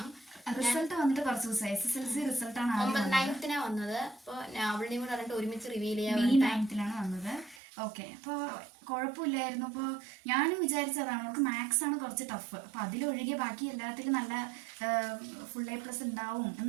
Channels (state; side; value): drops out; left; at 7.6 s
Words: റിസൾട്ട് വന്നിട്ട് കുറച്ച് ദിവസമായി. SSLC റിസൾട്ട് ആണ് 9th വന്നത്. അപ്പോൾ അവളുടെയും കൂടെ പറഞ്ഞിട്ട് ഒരുമിച്ച് റിവീൽ ചെയ്യാൻ May 9th വന്നത്. ഓക്കെ, അപ്പോൾ കുഴപ്പമില്ലായിരുന്നു. അപ്പോൾ ഞാനും വിചാരിച്ചതാണ് അവൾക്ക് മാത്സ് ആണ് കുറച്ച് ടഫ്, അപ്പോൾ അതിലൊഴികെ ബാക്കി എല്ലാത്തിലും നല്ല full A+ ഉണ്ടാവും